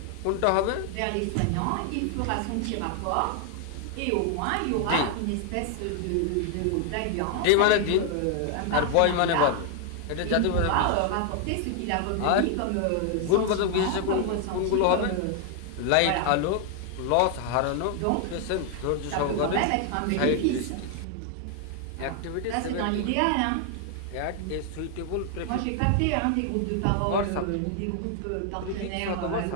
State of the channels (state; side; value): different; both; correlation 0.00